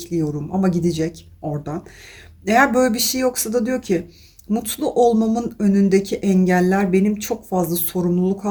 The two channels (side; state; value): both; identical; correlation 1.00